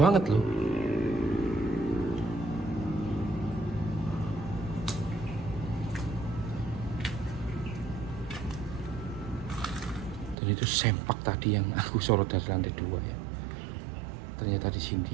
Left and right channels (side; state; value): left; drops out; at 10.4 s